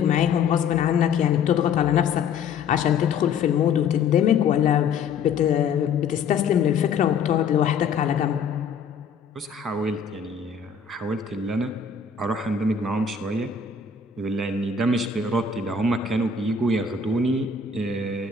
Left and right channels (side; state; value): right; quieter; 5.7 dB